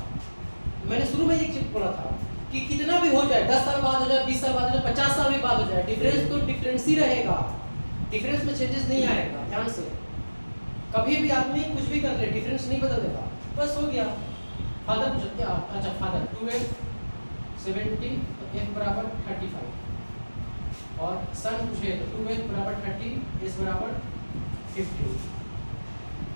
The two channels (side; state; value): both; inverted; correlation -1.00